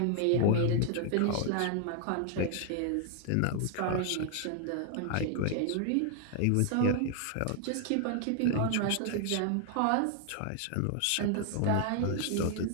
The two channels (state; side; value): different; both; correlation 0.00